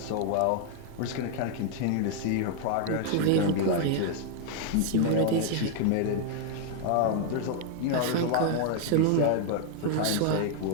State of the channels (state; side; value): different; both; correlation 0.00